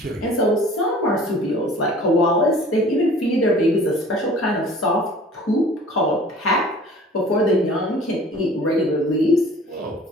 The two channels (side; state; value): both; normal; correlation 0.48